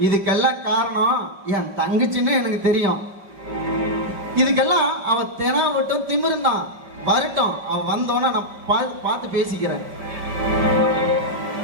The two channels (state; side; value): late; left; 5.2 ms